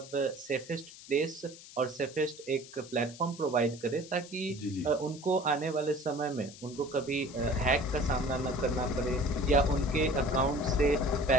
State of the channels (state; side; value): noise; left; hiss, 17 dB below the sound